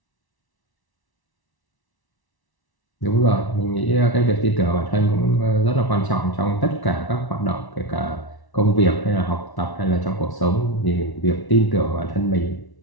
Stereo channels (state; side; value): late; right; 1.1 ms